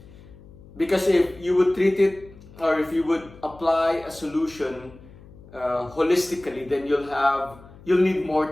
Because if you would treat it, or if you would apply a solution holistically, then you'll need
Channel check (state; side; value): noise; left; hum, 21 dB below the sound